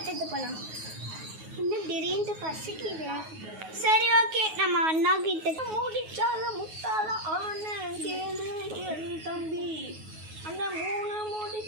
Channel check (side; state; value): left; late; 9.4 ms